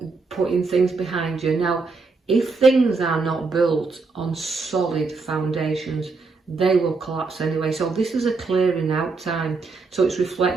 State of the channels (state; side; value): quieter; left; 4.2 dB